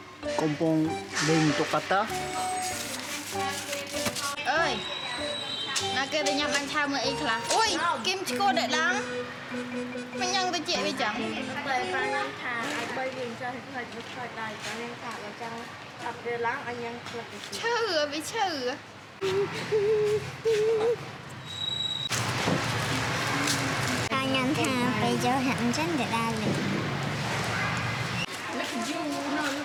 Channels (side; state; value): both; identical; correlation 1.00